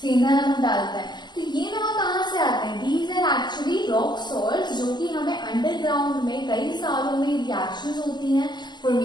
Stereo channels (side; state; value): right; late; 0.21 ms